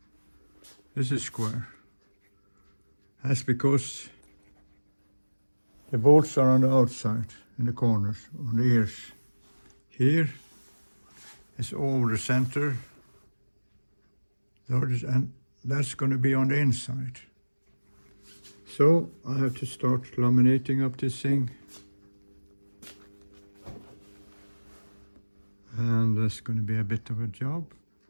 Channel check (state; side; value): inverted; both; correlation -1.00